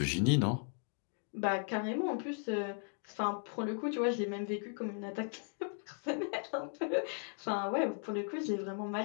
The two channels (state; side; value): silent; right; 53 dB below the other